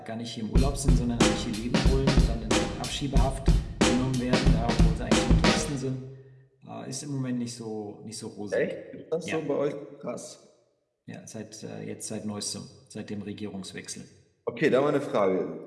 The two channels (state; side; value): identical; both; correlation 1.00